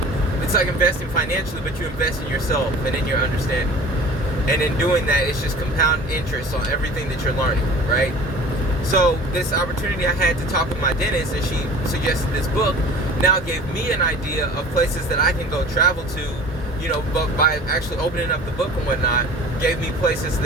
it's like investing financially, but you invest in yourself and in your understanding. And in doing that, it's just compound interest on everything that you're learning, right? So this opportunity I had to talk with my dentist, and she suggested this book, now gave me an idea of places that I can go travel to, but by actually opening up the book and whatnot, gave me places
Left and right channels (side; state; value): both; normal; correlation 0.42